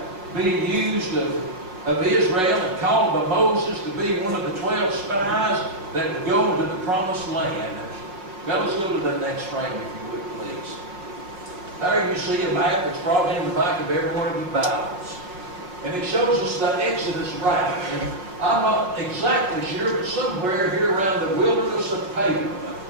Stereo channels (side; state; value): left; late; 5.4 ms